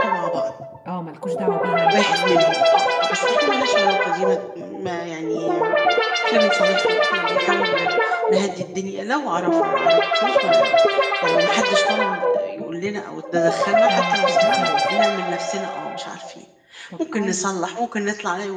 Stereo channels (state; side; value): identical; both; correlation 1.00